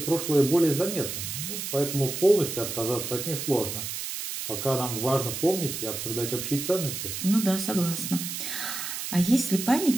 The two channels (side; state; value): right; noise; hiss, 5 dB below the sound